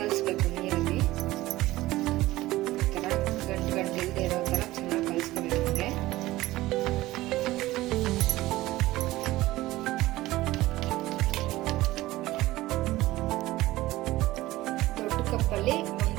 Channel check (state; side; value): quieter; left; 17.4 dB